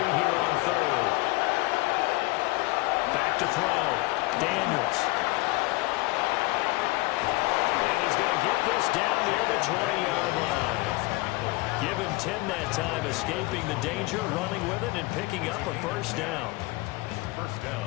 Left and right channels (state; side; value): quieter; right; 22.8 dB